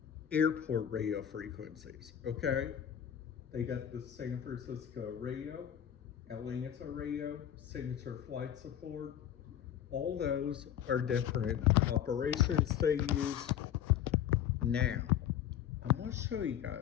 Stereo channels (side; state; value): right; quieter; 10.2 dB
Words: airport radio frequencies, okay? They got the San Francisco radio, Atlanta radio, Signature Flight Support. All those are different operations they use. Now, I'm going to show you